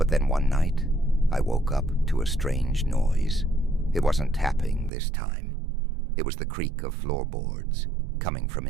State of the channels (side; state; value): left; drops out; at 4.9 s